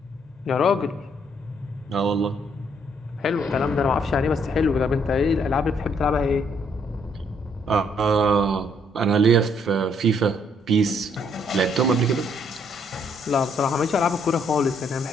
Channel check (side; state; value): both; normal; correlation 0.69